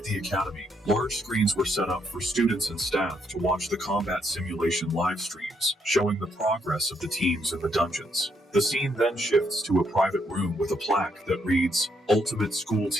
the academy, large screens were set up for students and staff to watch the combat simulation live streams, showing the progress of the teams in the dungeons. The scene then shifts to a private room with a plaque that reads, "Ultimate School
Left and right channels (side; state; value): both; normal; correlation 0.75